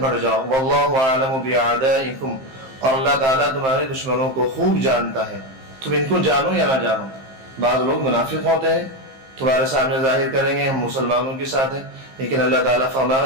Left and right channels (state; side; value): late; left; 15 ms